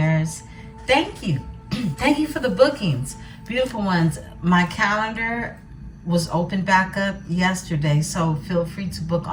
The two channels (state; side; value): identical; both; correlation 1.00